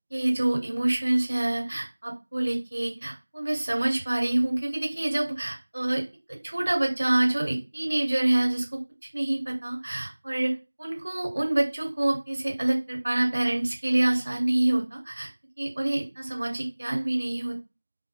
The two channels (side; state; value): both; inverted; correlation -1.00